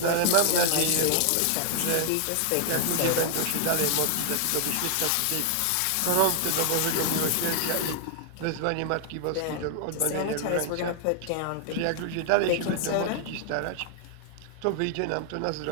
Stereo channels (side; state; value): both; different; correlation 0.00